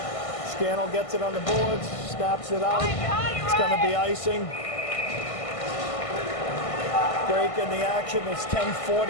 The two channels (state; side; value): late; right; 1.5 ms